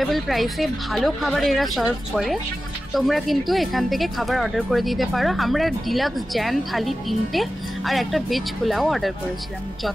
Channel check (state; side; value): normal; both; correlation 0.94